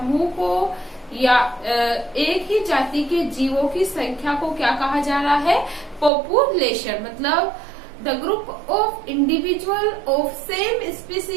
को या एक ही जाति के जीवों की संख्या को क्या कहा जा रहा है, पॉपुलेशन। मतलब the group of individual of same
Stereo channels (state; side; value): drops out; left; at 6.1 s